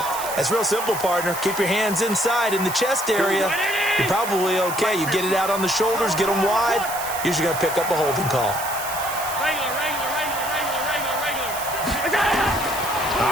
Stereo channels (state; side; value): noise; right; hiss, 9 dB below the sound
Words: That's real simple, partner. Keep your hands inside in the chest area. You're probably okay. You get it out on the shoulders, get them wide. Usually going to pick up a holding call.